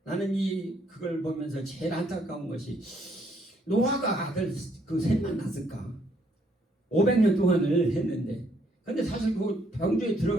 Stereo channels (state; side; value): normal; both; correlation 0.69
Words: 나는 그걸 보면서 제일 안타까운 것이 노아가 아들 그 셋만 낳았을까? 500년 동안을 했는데 근데 사실 그 방주에